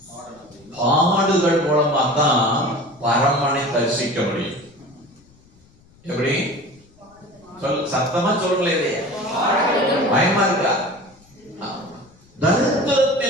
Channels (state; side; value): noise; left; rumble, 29 dB below the sound